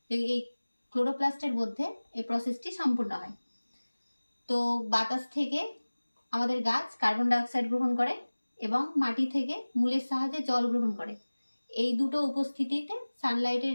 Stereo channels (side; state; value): both; inverted; correlation -1.00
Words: এই ক্লোরোপ্লাস্টের মধ্যে এই প্রসেসটি সম্পূর্ণ হয়। তো বাতাস থেকে আমাদের গাছ কার্বন ডাইঅক্সাইড গ্রহণ করে এবং মাটি থেকে মূলের সাহায্যে জল গ্রহণ করে। এই দুটো উপস্থিতিতে সানলাইটের